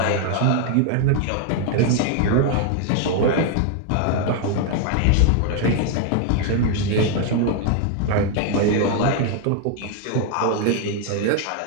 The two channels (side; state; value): both; different; correlation 0.01